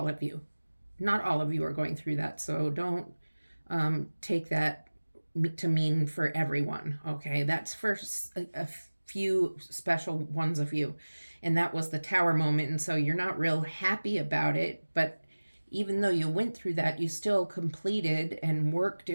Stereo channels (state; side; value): inverted; both; correlation -1.00